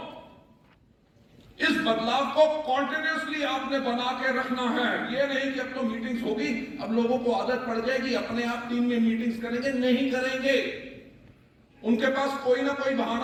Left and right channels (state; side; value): identical; both; correlation 1.00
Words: इस बदलाव को कॉन्टिन्यूसली आपने बना के रखना है। ये नहीं कि अब तो मीटिंग्स होगी, अब लोगों को आदत पड़ जाएगी, अपने आप टीम में मीटिंग्स करेंगे। नहीं करेंगे। उनके पास कोई ना कोई